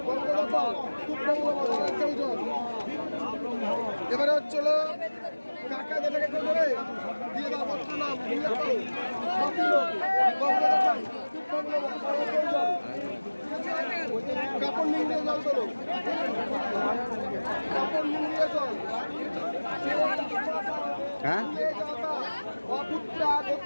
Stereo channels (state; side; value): inverted; both; correlation -1.00